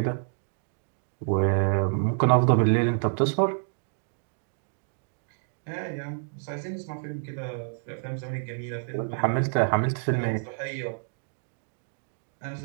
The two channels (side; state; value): left; silent; digital silence